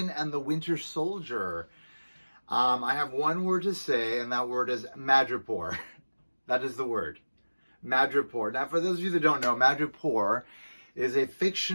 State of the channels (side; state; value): both; inverted; correlation -1.00